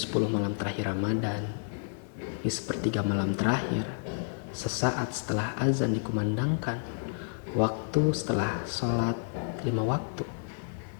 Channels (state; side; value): silent; right; 58 dB below the other